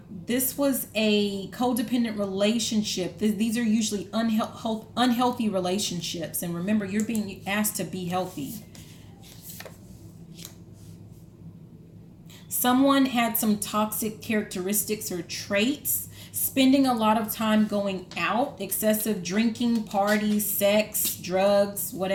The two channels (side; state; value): both; identical; correlation 1.00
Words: this was a codependent relationship. These are usually unhealthy relationships. And remember, you're being asked to be healthy. Someone had some toxic characteristics or traits, spending a lot of time going out, excessive drinking, parties, sex, drugs,